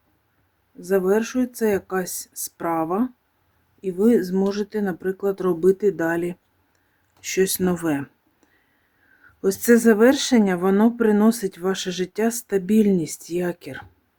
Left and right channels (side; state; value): both; identical; correlation 1.00